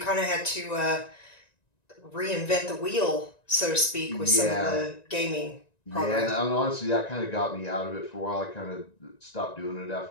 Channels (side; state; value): right; late; 1.9 ms